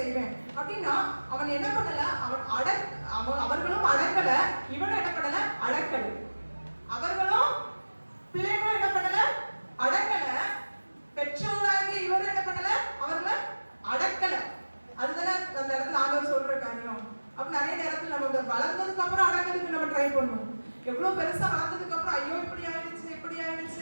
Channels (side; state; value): both; inverted; correlation -1.00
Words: அப்படின்னா அவன் என்ன பண்ணல? அவர்களும் அடக்கல, இவனும் என்ன பண்ணல? அடக்கல. அவர்களும் பிள்ளைகளும் என்ன பண்ணல? அடக்கல. பெற்றோராகிய இவரும் என்ன பண்ணல? அவர்களை அடக்கல. அதுதானே அந்த இடத்துல ஆண்டவர் சொல்ற காரியம். அப்ப நிறைய நேரத்துல நம்ம வளர்ந்ததுக்கு அப்புறம் அடக்கிறதுக்கு நம்ம ட்ரை பண்ணுவோம். எவ்வளவு பெருசா வளர்ந்ததுக்கு அப்புறம் ஐயோ இப்படி